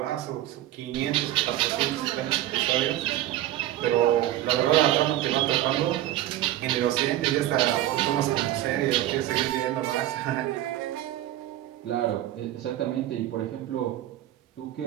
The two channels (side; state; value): left; quieter; 13.8 dB